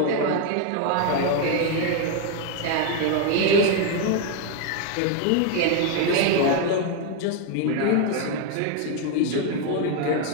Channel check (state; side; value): different; both; correlation 0.01